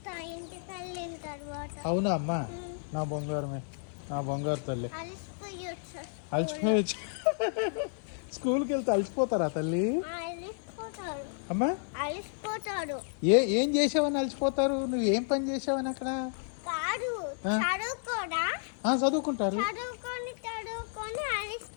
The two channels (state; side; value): silent; right; 57 dB below the other